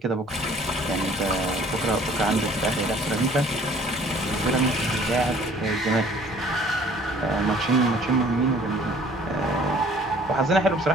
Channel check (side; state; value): both; normal; correlation 0.54